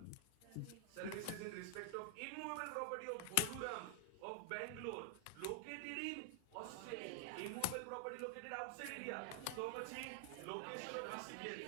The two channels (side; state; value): both; different; correlation 0.00